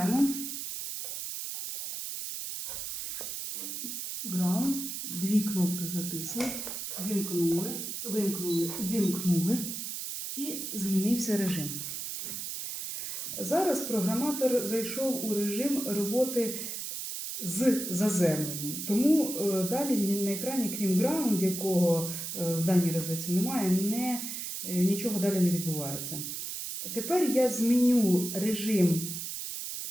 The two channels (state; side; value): noise; right; hiss, 5 dB below the sound